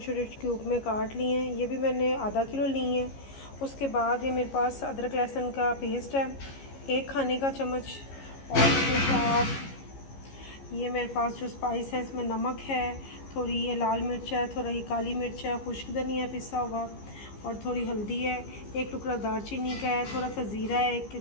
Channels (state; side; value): late; right; 15 ms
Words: छोटे क्यूब में काट ली हैं, ये भी मैंने आधा किलो ली हैं। उसके बाद ये मेरे पास अदरक लहसुन का पेस्ट है, 1 खाने का चम्मच। और उसके बाद ये मेरे पास जो स्पाइस है इसमें नमक है, थोड़ी ये लाल मिर्च है, थोड़ा ये काली मिर्च है, खुश्क धनिया पिसा हुआ, और थोड़ी हल्दी है, एक टुकड़ा दालचीनी का है, थोड़ा सा ज़ीरा है,